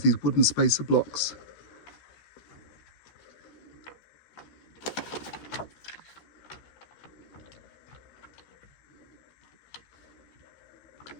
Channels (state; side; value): late; right; 14 ms